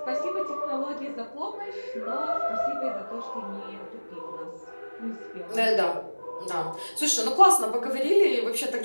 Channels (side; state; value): both; inverted; correlation -1.00